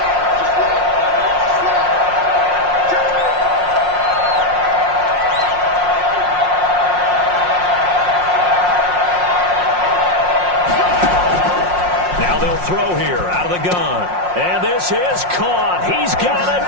Now they'll throw here out of the gun. And this is caught. He's got a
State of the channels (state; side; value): late; left; 5.6 ms